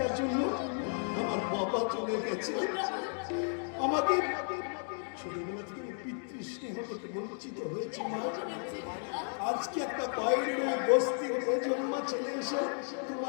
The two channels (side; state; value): right; silent; 55 dB below the other